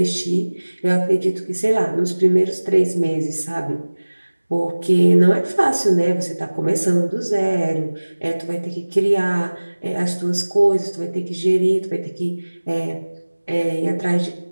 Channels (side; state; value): both; inverted; correlation -1.00